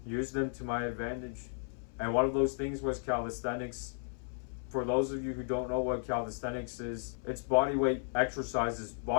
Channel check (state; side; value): silent; right; 55 dB below the other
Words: use them to my advantage. And one of those things was calisthenics. For those of you who don't know what calisthenics is, it's bodyweight exercises,